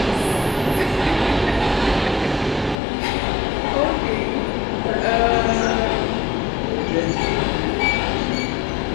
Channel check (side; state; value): right; drops out; at 2.8 s